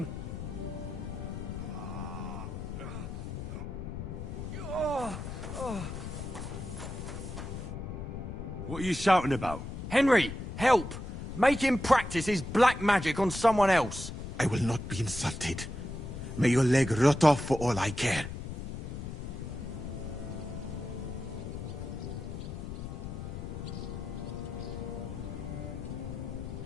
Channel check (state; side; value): noise; left; rumble, 7 dB below the sound